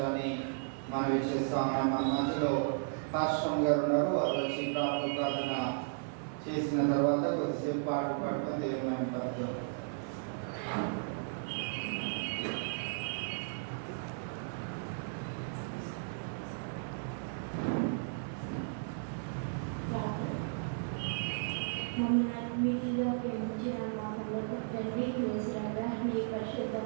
మనవి చేస్తాం. మన మధ్యలో కాశ్రమ్ గారు ఉన్నారు. వారు వచ్చి ప్రార్థన చేసిన తర్వాత కొద్దిసేపు పాట పాడుతాం. దేవుని పడుతుంది. మీటిగా ప్రేమించిన మాటలు తండ్రి వేసిరాగా మీ పరిశుద్ధ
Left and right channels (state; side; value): silent; left; digital silence